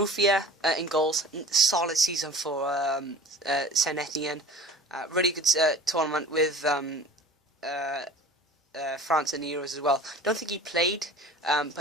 in goals, solid season for Saint Etienne. Really good tournament with France in the Euros as well. Don't think he played,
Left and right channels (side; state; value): both; normal; correlation 0.42